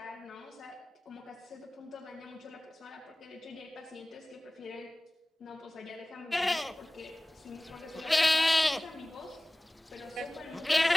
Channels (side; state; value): both; normal; correlation 0.98